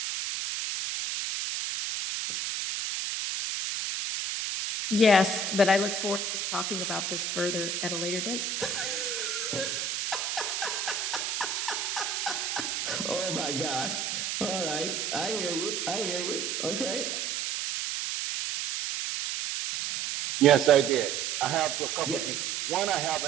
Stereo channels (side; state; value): right; noise; hiss, 2 dB below the sound